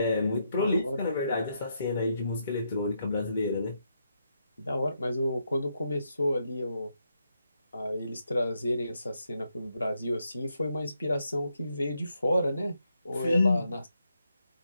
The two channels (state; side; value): inverted; both; correlation -0.80